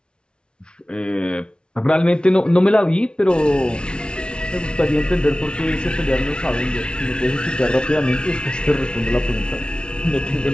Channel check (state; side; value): late; right; 0.056 ms